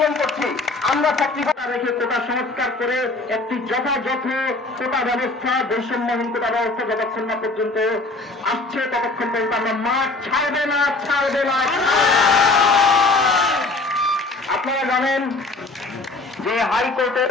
করছি। আমরা চাকরিটা রেখে কোটা সংস্কার করে একটি যথাযথ কোটা ব্যবস্থা, বৈষম্যহীন কোটা ব্যবস্থা যতক্ষণ না পর্যন্ত আসছে ততক্ষণ পর্যন্ত আমরা মাঠ ছাড়বে না। আপনারা জানেন যে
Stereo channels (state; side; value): quieter; right; 3.3 dB